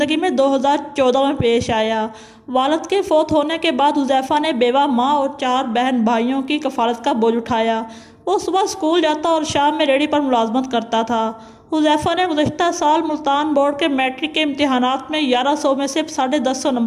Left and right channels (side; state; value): both; identical; correlation 1.00